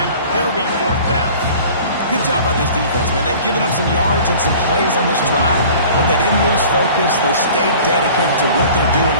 It'll be fourth down. Good job by this defense, man. They've given up some yards and some plays on this drive, but they didn't lose focus. They stayed dedicated to what they're doing,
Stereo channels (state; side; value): inverted; both; correlation -0.45